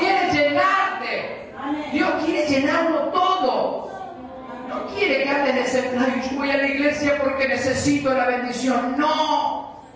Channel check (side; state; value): both; identical; correlation 1.00